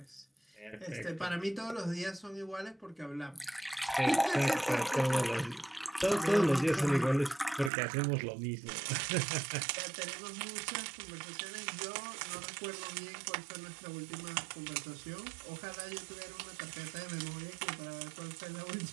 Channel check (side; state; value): left; drops out; at 7.7 s